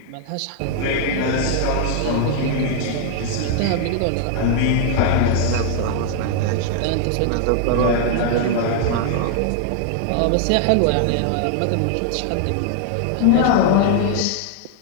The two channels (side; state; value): both; different; correlation 0.00